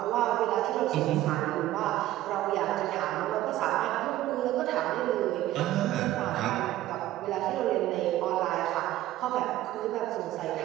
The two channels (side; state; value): left; quieter; 14.7 dB